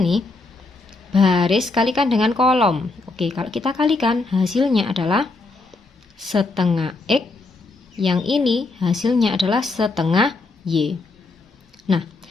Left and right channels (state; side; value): quieter; right; 3.5 dB